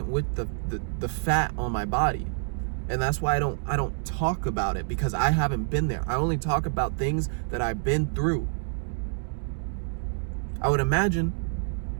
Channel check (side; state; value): left; silent; digital silence